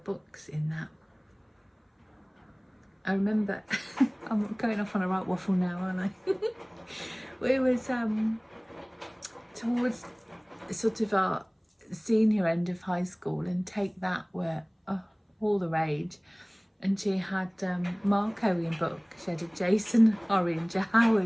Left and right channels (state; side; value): identical; both; correlation 1.00